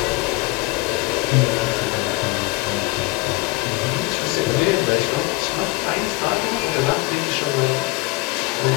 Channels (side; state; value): right; quieter; 22.5 dB